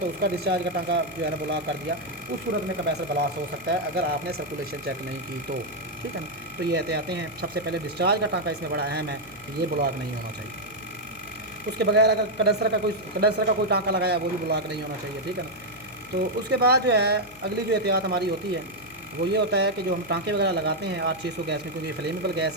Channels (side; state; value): left; noise; hum, 22 dB below the sound